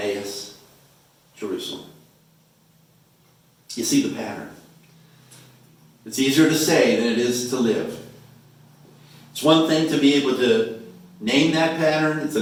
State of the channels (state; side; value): identical; both; correlation 1.00